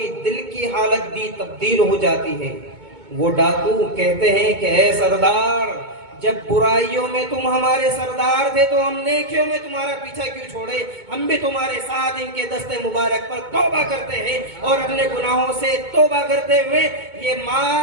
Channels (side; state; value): left; late; 2.2 ms